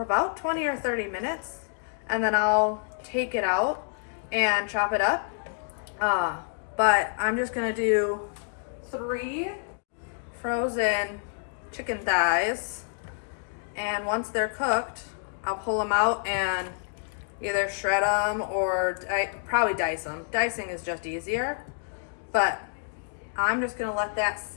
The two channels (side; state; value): right; silent; digital silence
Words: about 20 or 30 minutes, and then I'll take it out and chop it up. But I'm just gonna do 3 frozen chicken thighs, and once they're cooked, I'll pull them out and either shred them or probably dice them. Dicing is just easier, but I'm just gonna let that